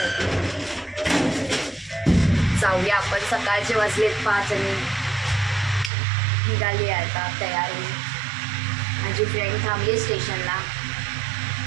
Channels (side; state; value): left; drops out; at 5.9 s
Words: जाऊया आपण. सकाळचे वाजलेत 5 आणि निघाली आहे आता तयार होऊन. माझी फ्रेंड थांबली स्टेशनला,